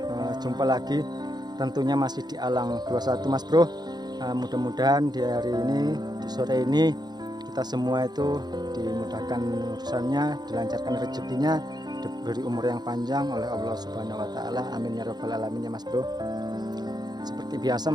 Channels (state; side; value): late; left; 0.20 ms